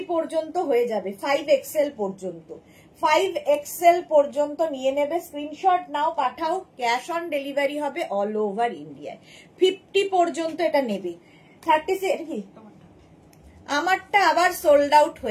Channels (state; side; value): identical; both; correlation 1.00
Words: পর্যন্ত হয়ে যাবে, 5XL পর্যন্ত, 5XL পর্যন্ত নিয়ে নেবে। স্ক্রিনশট নাও, পাঠাও, ক্যাশ অন ডেলিভারি হবে অল ওভার ইন্ডিয়ায়। 50 পর্যন্ত এটা নেবে। 36 কি আমারটা আবার সোল্ড আউট